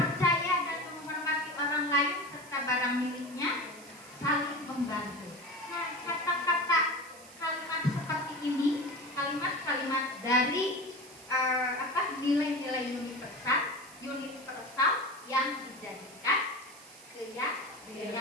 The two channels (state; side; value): noise; right; hiss, 20 dB below the sound